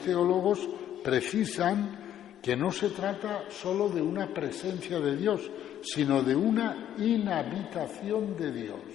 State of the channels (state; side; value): quieter; right; 10.9 dB